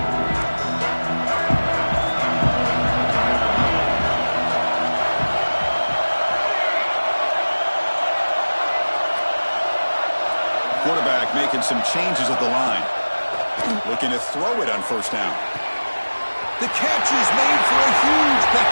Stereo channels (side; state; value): both; inverted; correlation -1.00